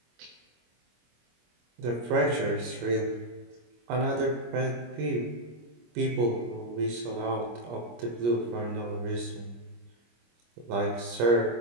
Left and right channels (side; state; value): left; late; 25 ms